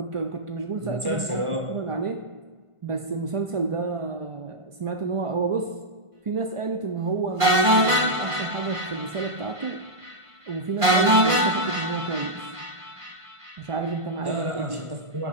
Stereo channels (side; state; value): left; late; 1.5 ms